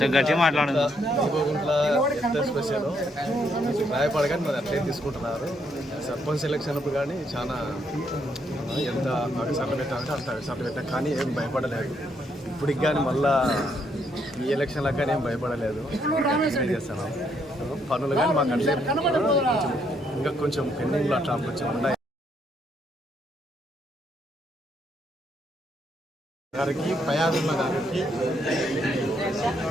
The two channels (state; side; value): normal; both; correlation 0.74